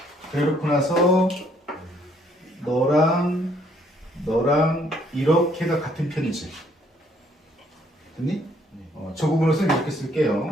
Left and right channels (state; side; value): normal; both; correlation 0.66